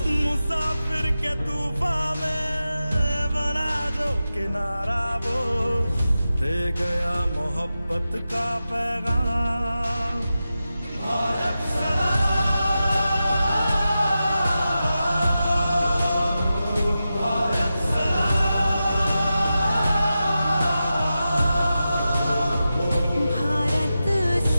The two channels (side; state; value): both; inverted; correlation -0.92